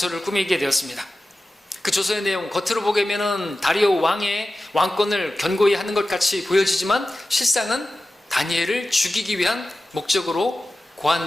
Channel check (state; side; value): normal; both; correlation 0.94